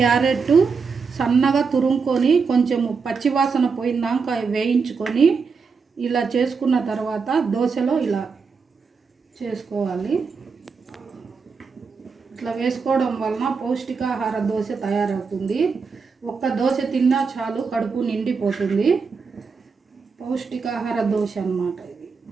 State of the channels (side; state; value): left; quieter; 5.2 dB